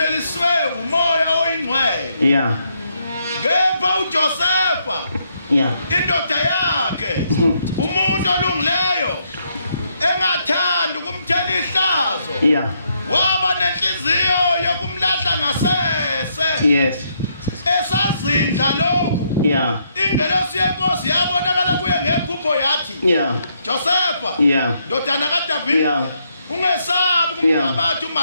umoya oyingcwele yeah kepha uJosefa yeah indoda yakhe umuntu olungileyo engathanda ukumthela ihlazo yeah waba nenhliziyo yokumlahla ngasese yes esazindla lokhu Yeah. ingelosi yenkosi yabonakala kuye ngephupho yathi Yeah. Josepha Yeah. ndodana kaDavide Yeah. ungesabi Yeah. kumntabathu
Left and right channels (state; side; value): inverted; both; correlation -0.75